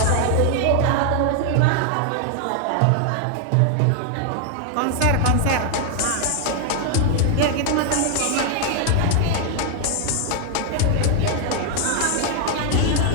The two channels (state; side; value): different; both; correlation 0.00